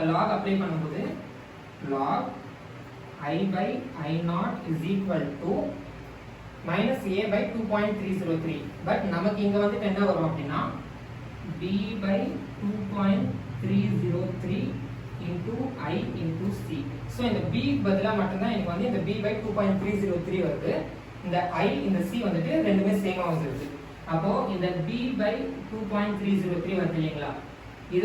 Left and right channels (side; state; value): both; identical; correlation 1.00